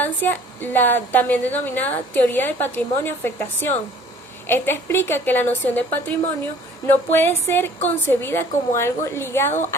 la también denominada teoría del patrimonio-afectación. Esta explica que la noción de patrimonio no puede ser concebida como algo ligado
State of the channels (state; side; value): normal; both; correlation 0.52